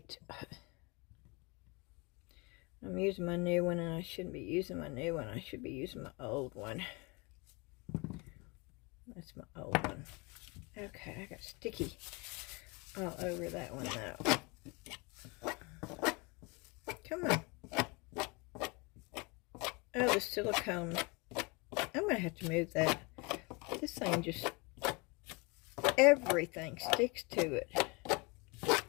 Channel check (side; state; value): right; quieter; 28.3 dB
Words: I'm using my new one, and I shouldn't be using my new one. I should be using my old one. That's my old one. Okay, I got sticky all over that one though. Come on. Oh, the silicone. I'm going to have to move that. This thing just, everything sticks to it.